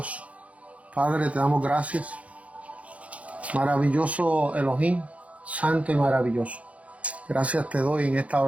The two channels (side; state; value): left; late; 0.065 ms